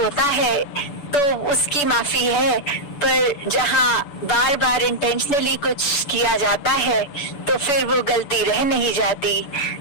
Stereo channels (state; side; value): late; right; 6.9 ms